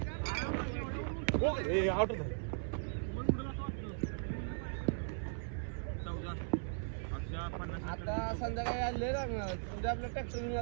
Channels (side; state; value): left; silent; 52 dB below the other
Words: आउट आता संध्याकाळी आले लागणार म्हणजे आपल्या ट्रॅक्टर घेऊन